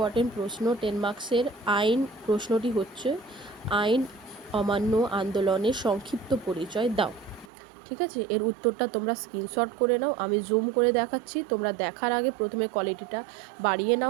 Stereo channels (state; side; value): drops out; left; at 7.5 s